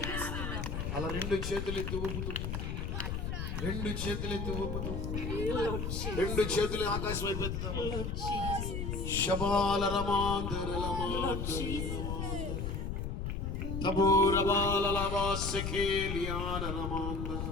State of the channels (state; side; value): noise; left; rumble, 3 dB below the sound